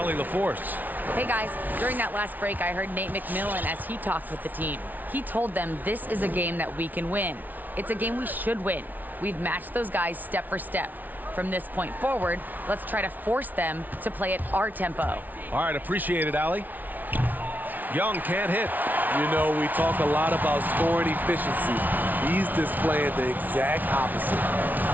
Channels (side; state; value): left; late; 0.081 ms